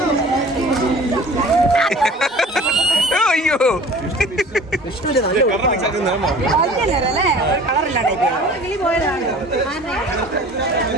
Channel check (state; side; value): normal; both; correlation 0.44